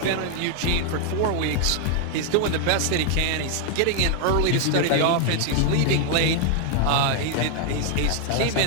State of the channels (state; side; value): different; both; correlation 0.00